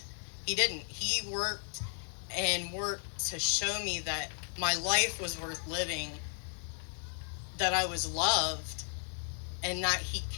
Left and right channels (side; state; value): right; silent; 55 dB below the other